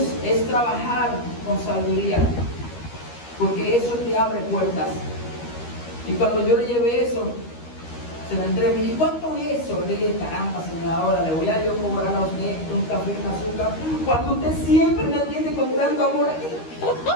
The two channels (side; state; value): right; late; 13 ms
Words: es trabajar con sabiduría, porque eso te abre puertas. Y cuando yo le llevé eso, se la entregué, me dije, ¿cuánto es eso? Le dije, caramba, señora, ahora le voy a yo cobrar a usted un café y un azúcar, cuando usted siempre me atiende con tanto amor aquí.